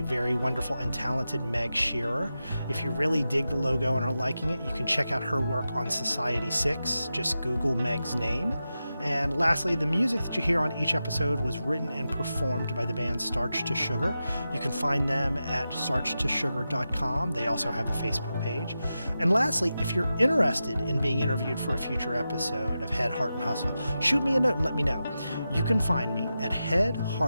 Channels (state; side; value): inverted; both; correlation -0.91